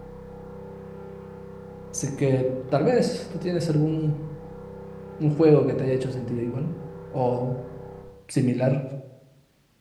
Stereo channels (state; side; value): identical; both; correlation 1.00